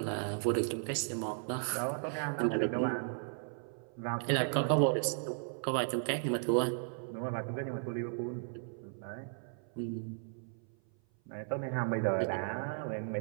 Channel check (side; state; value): left; silent; 54 dB below the other